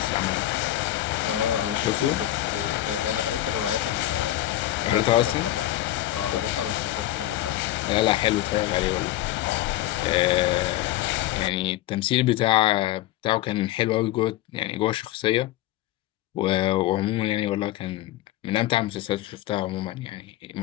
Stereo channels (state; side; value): quieter; right; 14.8 dB